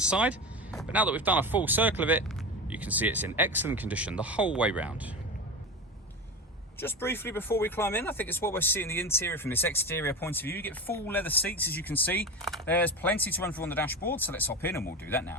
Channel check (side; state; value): both; normal; correlation 0.24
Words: But now that we've done a full circle of it, you can see it's in excellent condition the whole way round. Just briefly before we climb in, I think it's what we're seeing the interior from this exterior point of view. You get full leather seats, as you can see. There's plenty to run through on the dashboard, so let's hop in and we'll do that